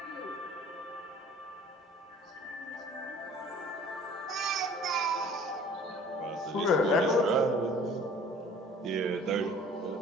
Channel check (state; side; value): normal; both; correlation 0.50